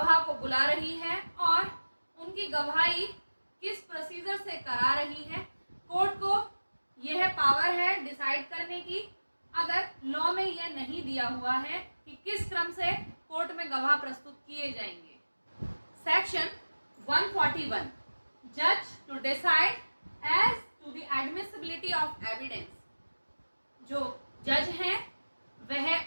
को बुला रही है और उनकी गवाही किस प्रोसीजर से करा रही है। कोर्ट को यह पावर है डिसाइड करने की, अगर लॉ में यह नहीं दिया हुआ है कि किस क्रम से कोर्ट में गवाह प्रस्तुत किए जाएंगे। सेक्शन 141 जज to decide as to the admissibility of evidence. जो जज हैं वह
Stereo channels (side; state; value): both; inverted; correlation -1.00